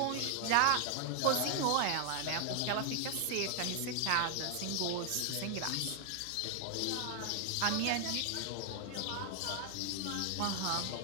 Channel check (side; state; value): both; different; correlation 0.00